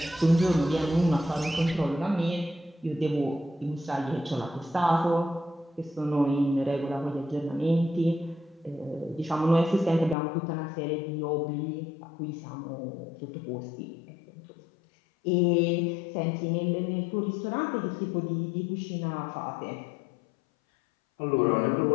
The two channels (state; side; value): drops out; right; at 10.2 s